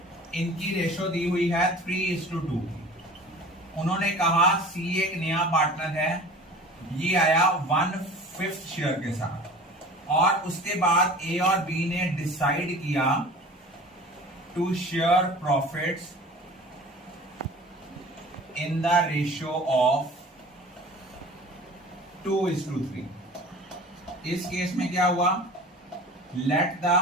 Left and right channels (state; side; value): normal; both; correlation 0.41